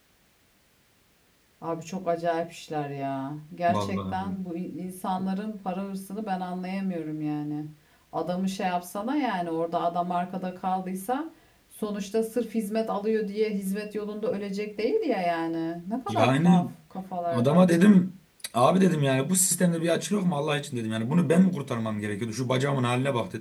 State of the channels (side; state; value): both; identical; correlation 1.00